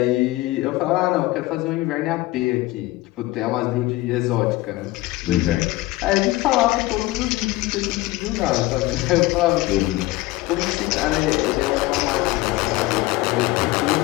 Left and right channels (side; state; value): right; quieter; 18.8 dB